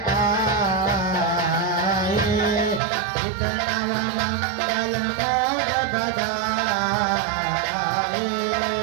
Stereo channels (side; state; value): left; drops out; at 2.8 s